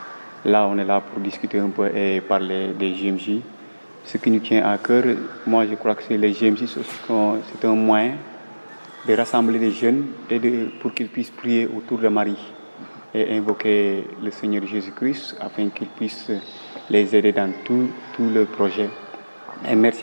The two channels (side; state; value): both; inverted; correlation -1.00